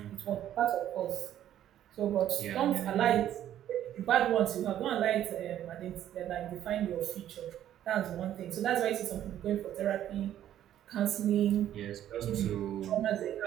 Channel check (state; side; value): quieter; left; 11.5 dB